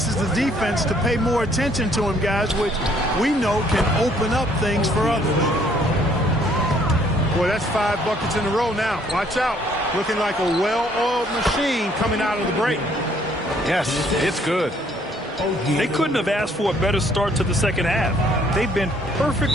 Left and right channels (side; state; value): both; normal; correlation 0.64